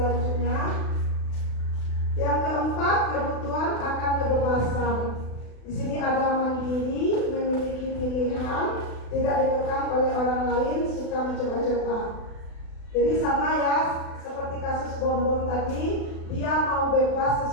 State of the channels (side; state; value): right; late; 36 ms